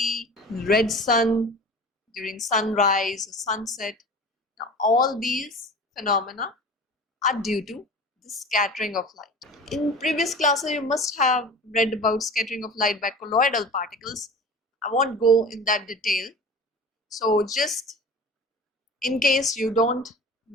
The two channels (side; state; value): both; normal; correlation 0.37